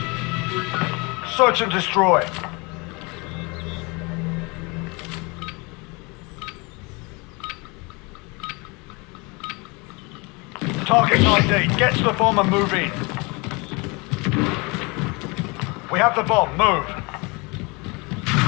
Search and destroy. Target ID. Get to the bomb and move in. We have the bomb. Move.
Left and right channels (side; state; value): right; quieter; 28.0 dB